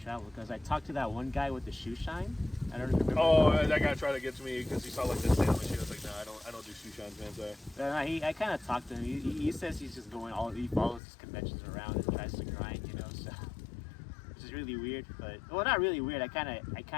travel because I talked to that one guy with the shoe shine. I don't remember. Oh, that guy tried to get to me because he saw like this sandwich. He was like, no, I don't do shoe shines, man. Sorry. I kind of talked to him. He says he's just going he follows his conventions around and tries to grind, you know. So, which is really weird, but well, not really weird. I kind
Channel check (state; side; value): drops out; right; at 11.0 s